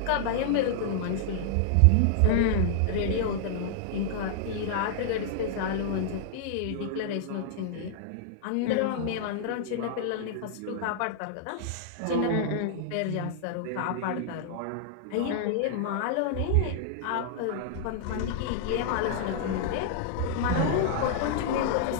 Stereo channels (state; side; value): different; both; correlation -0.01